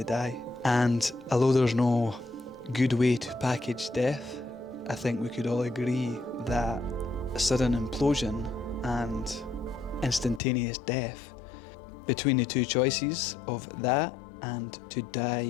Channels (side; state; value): right; drops out; at 10.4 s